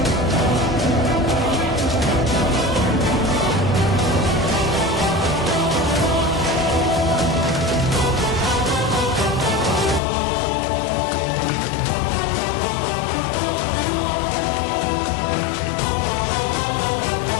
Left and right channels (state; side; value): drops out; right; at 10.0 s